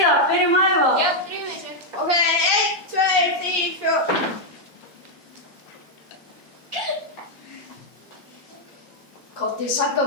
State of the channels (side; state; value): both; normal; correlation 0.00